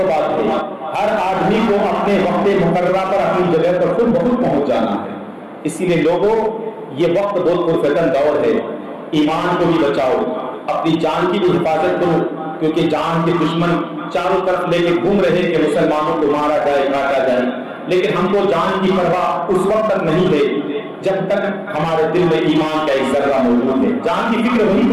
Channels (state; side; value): identical; both; correlation 1.00